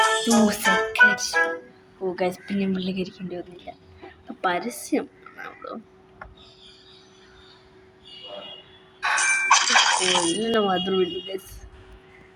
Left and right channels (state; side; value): identical; both; correlation 1.00